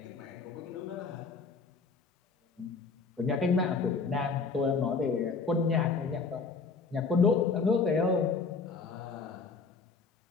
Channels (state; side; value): quieter; right; 4.7 dB